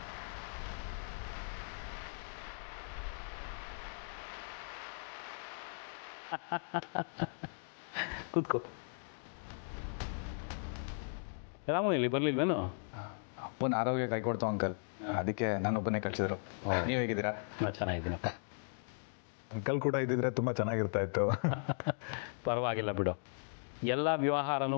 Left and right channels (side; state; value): right; silent; digital silence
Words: ಕೂತ್ಕೋ. ರಾಮು ಇಲ್ಲಿ ಬರ್ಲಿಲ್ವೇನು? ಅಪ್ಪನ ಆರೋಗ್ಯ ಕೈ ಕೊಡ್ತು ಅಂಕಲ್, ಅದಕ್ಕೆ ನಾನೊಬ್ಬನೇ ಕಳಿಸಿದ್ರು. ನೀವು ಹೇಗಿದ್ದೀರಾ? ನಾನು ಚೆನ್ನಾಗಿದ್ದೀನಪ್ಪ. ಅಂಕಲ್ ಕೂಡ ಇದ್ದಿದ್ರೆ ತುಂಬ ಚೆನ್ನಾಗಿರ್ತಾ ಇತ್ತು. ಪರವಾಗಿಲ್ಲ ಬಿಡು. ಎಲ್ಲ ವ್ಯವಹಾರನೂ